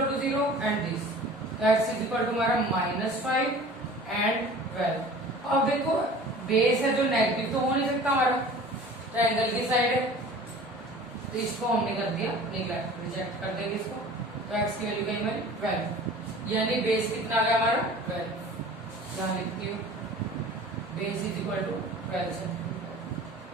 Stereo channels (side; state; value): left; noise; hum, 28 dB below the sound